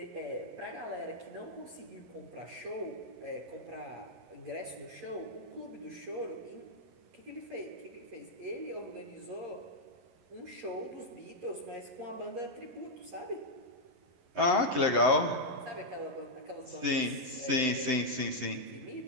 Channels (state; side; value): late; left; 11 ms